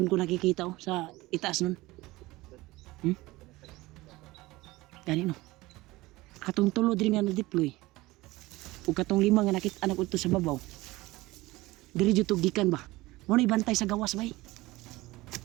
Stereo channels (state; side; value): quieter; left; 19.9 dB